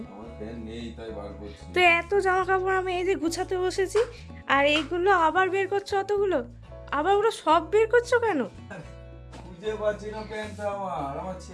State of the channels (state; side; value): identical; both; correlation 1.00